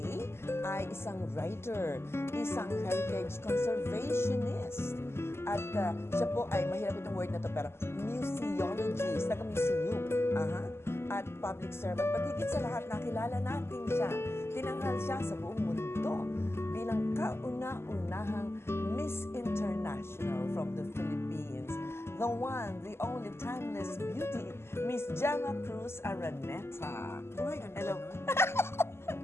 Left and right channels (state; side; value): late; right; 0.12 ms